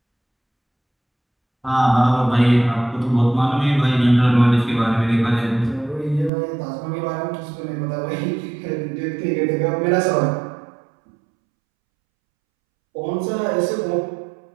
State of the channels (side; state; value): left; drops out; at 6.3 s